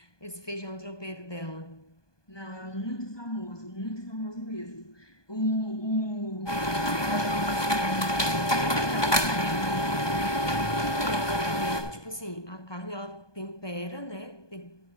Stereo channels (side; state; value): right; late; 1.2 ms